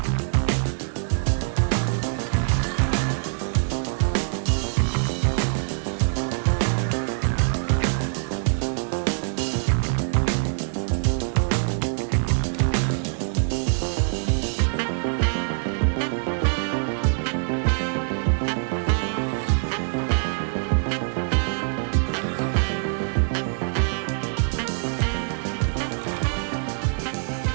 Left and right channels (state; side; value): silent; left; 62 dB below the other